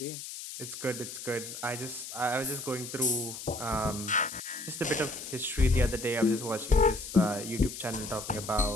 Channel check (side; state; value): left; noise; hiss, 9 dB below the sound